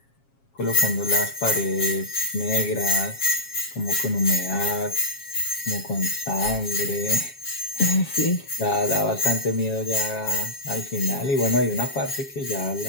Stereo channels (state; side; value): late; right; 7.3 ms